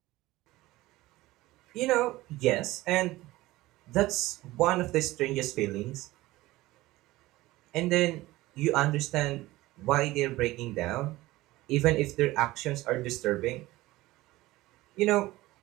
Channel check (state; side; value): quieter; left; 18.3 dB